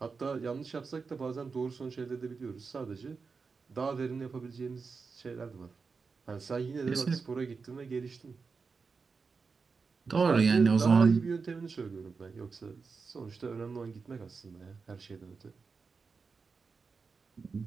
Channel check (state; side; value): quieter; left; 4.9 dB